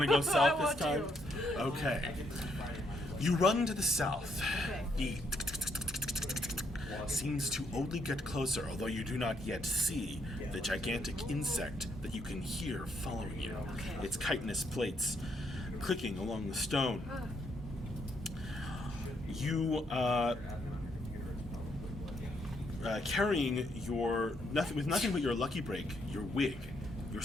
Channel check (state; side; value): normal; both; correlation 0.74